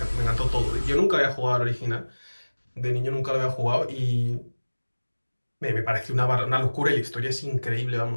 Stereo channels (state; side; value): inverted; both; correlation -1.00